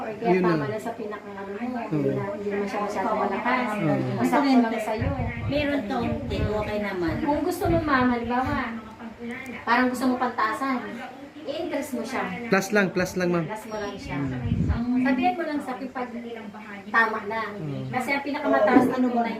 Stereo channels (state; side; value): identical; both; correlation 1.00